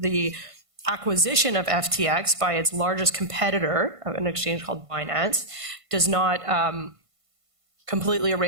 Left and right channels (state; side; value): late; left; 1.5 ms